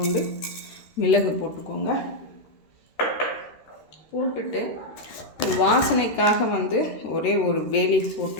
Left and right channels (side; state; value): right; late; 13 ms